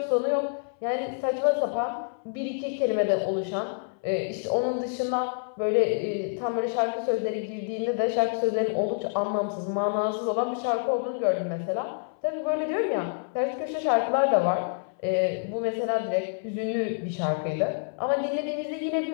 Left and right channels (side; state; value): right; silent; 60 dB below the other